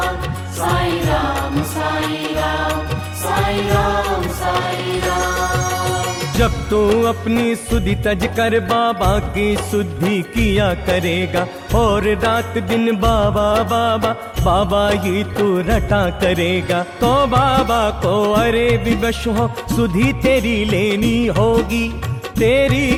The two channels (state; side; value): identical; both; correlation 1.00